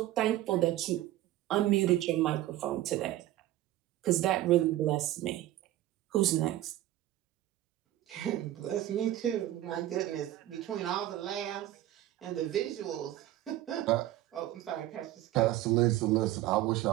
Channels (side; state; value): left; quieter; 14.6 dB